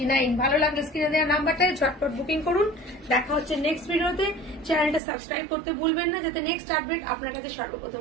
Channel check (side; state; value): left; drops out; at 5.0 s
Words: ভালো লাগলে স্ক্রিনে দেওয়া নাম্বারটায় ঝটপট বুকিং করুন। দেখা হচ্ছে নেক্সট ভিডিওতে। চ্যানেলটা সাবস্ক্রাইব করতে ভুলবেন না, যাতে নেক্সট আপডেট আপনার কাছে